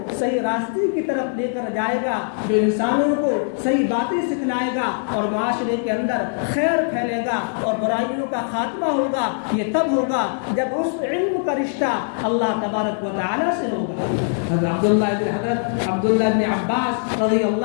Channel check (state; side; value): silent; right; 64 dB below the other